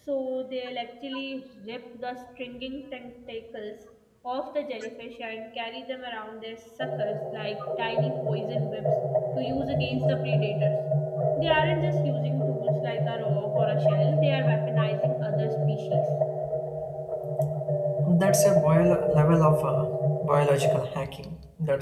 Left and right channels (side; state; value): both; identical; correlation 1.00